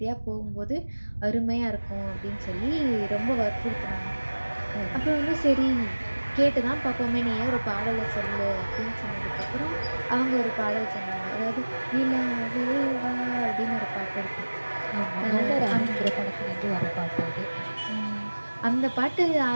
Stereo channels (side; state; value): both; inverted; correlation -1.00